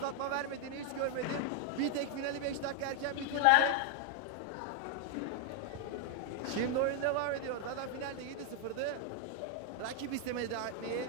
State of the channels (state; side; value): different; both; correlation 0.00